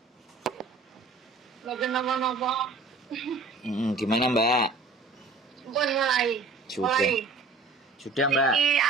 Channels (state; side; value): quieter; left; 3.6 dB